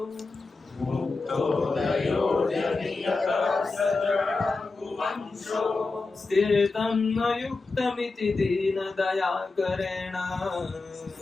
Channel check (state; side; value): quieter; right; 3.8 dB